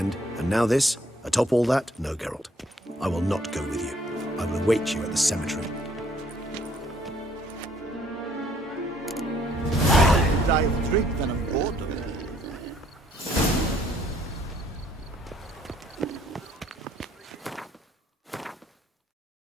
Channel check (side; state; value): both; normal; correlation 0.64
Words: and now this? Atop all that? No, Geralt. I will not go with you. I will await you at the cemetery. I've drink than I'm bored of it.